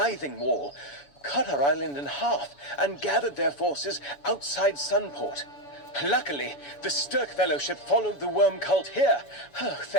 Wall, cut our island in half, and gathered their forces outside Sunport. Luckily, the Stirk Fellowship followed the Worm Cult here. Oh,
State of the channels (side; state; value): right; late; 7.0 ms